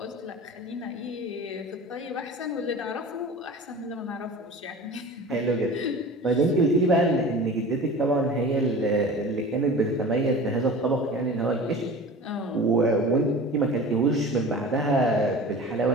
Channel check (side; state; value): both; normal; correlation 0.37